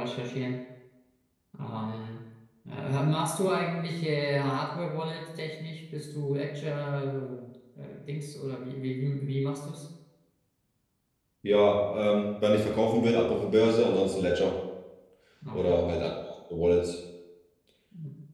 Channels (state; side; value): identical; both; correlation 1.00